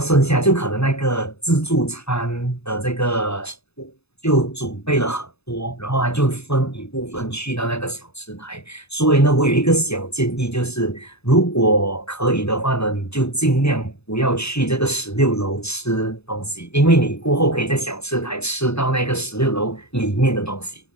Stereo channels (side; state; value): right; late; 0.79 ms